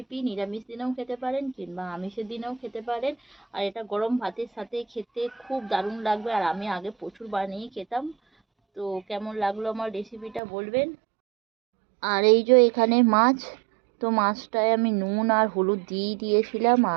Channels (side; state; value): left; drops out; at 10.4 s